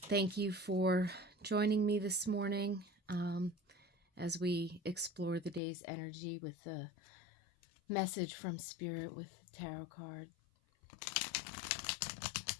you for joining me this morning as we explore the day's energy with the message from Spirit with the tarot card.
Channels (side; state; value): right; drops out; at 5.6 s